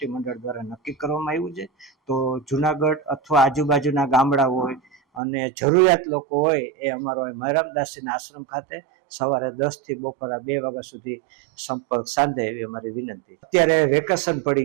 મંડળ દ્વારા નક્કી કરવામાં આવ્યું છે. તો જુનાગઢ અથવા આજુબાજુના ગામડા હોય અને જરૂરિયાત લોકો હોય એ અમારો માયરામદાસજીના આશ્રમ ખાતે સવારે 10 થી બપોરના 2 વાગ્યા સુધી સંપર્ક સાધે એવી અમારી વિનંતી. અત્યારે વેકેશન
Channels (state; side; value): drops out; left; at 5.2 s